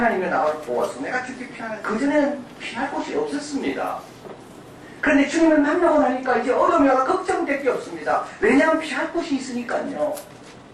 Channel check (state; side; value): identical; both; correlation 1.00